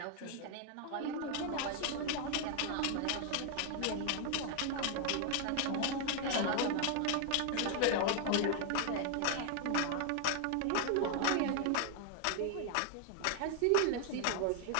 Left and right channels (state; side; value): different; both; correlation 0.00